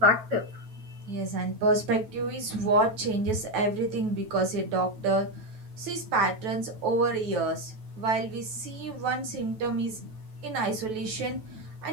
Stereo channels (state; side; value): late; left; 9.2 ms